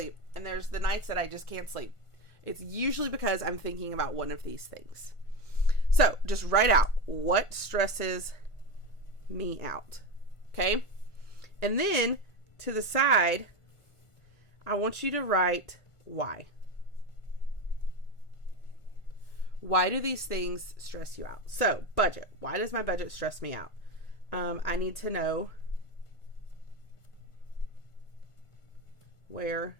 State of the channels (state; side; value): late; right; 1.4 ms